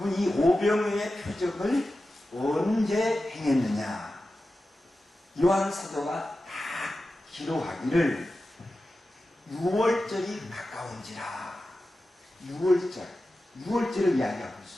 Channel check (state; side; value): normal; both; correlation 0.93